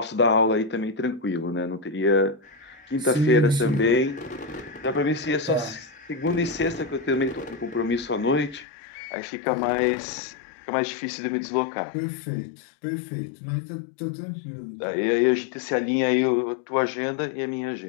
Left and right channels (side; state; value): right; drops out; at 8.7 s